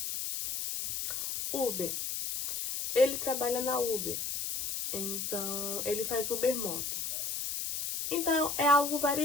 Uber. Ele trabalha na Uber. Então, ele faz Uber Moto. Então, é algo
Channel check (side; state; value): left; noise; hiss, 3 dB below the sound